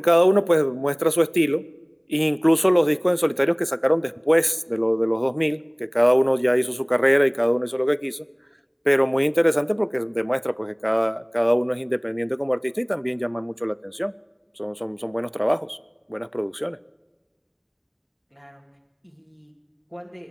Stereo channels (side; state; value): both; identical; correlation 1.00